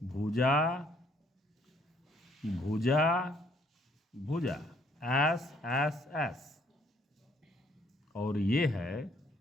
भुजा भुजा, एस एस एस, और ये है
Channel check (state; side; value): normal; both; correlation 0.65